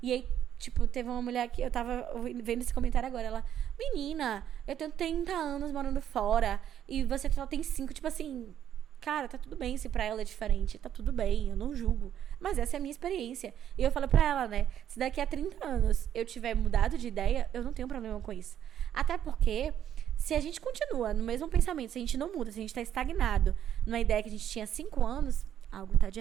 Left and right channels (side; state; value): left; quieter; 10.2 dB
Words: E aí, tipo, teve uma mulher que eu tava vendo esse comentário agora. Ela, menina, eu tenho 30 anos morando fora e você só tem 5. Tipo assim, cara, tá tudo bem se pra ela é diferente. Tá tudo bem, eu não julgo. Mas essa é a minha experiência. E eu falo pra ela, né, se daqui a 30 anos eu tiver mudado de ideia, eu não tenho problema com isso. Até porque, se a gente continua no mesmo pensamento, se a gente não muda, se a gente tá estagnado numa ideia que a gente tinha 5 anos... algo tá de